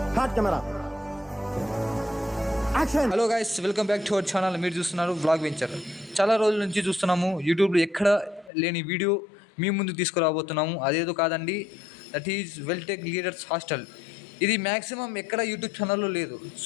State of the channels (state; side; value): drops out; right; at 8.5 s